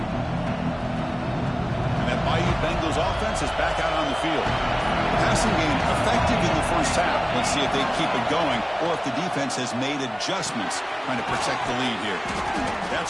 Bengals offense is back out on the field. Passing game effective in the first half. Let's see if they keep it going or if the defense has made adjustments trying to protect the lead here.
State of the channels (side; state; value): both; identical; correlation 1.00